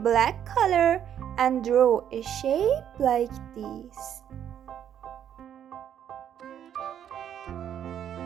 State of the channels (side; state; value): left; quieter; 9.7 dB